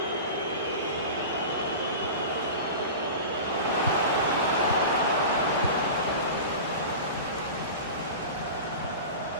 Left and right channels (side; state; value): both; inverted; correlation -0.31